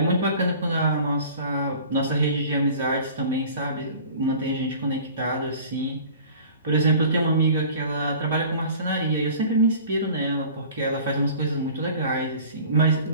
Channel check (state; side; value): inverted; both; correlation -0.45